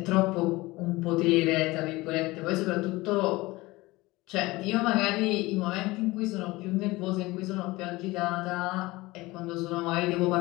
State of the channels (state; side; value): quieter; right; 20.8 dB